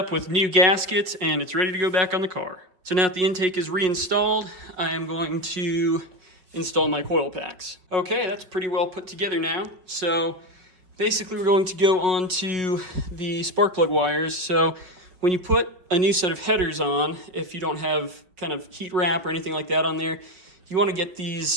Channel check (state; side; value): late; left; 5.4 ms